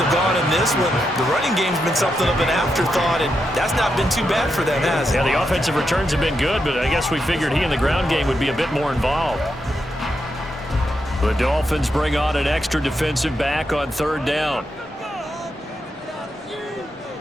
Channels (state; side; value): normal; both; correlation 0.84